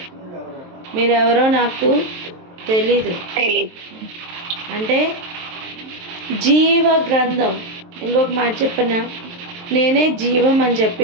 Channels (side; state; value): left; late; 23 ms